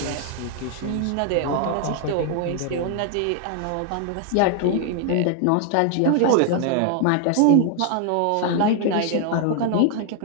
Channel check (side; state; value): both; different; correlation 0.00